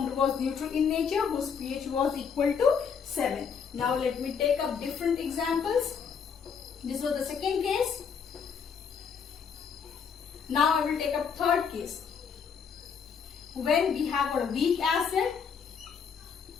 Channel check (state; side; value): quieter; right; 6.5 dB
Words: was neutral in nature, whose pH was equal to 7. Now let me take up different examples. This was the second case. Now I will take up third case. When we have a weak acid